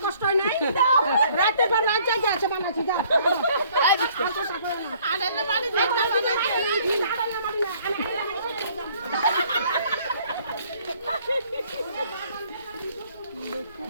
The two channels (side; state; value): both; inverted; correlation -0.60